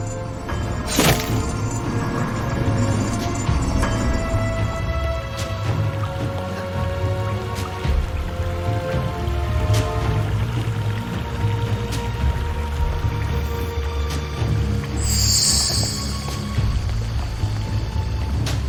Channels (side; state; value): both; identical; correlation 1.00